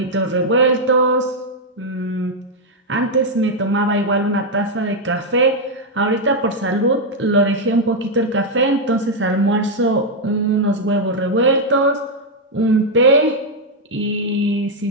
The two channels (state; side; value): normal; both; correlation -0.01